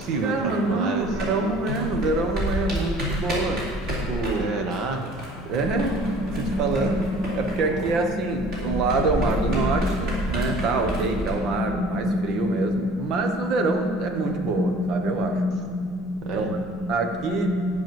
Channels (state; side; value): normal; both; correlation 0.51